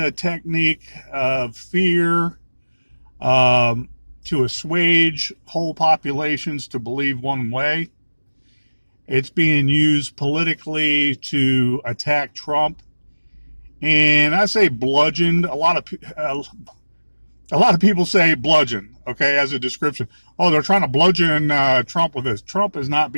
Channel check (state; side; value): inverted; both; correlation -1.00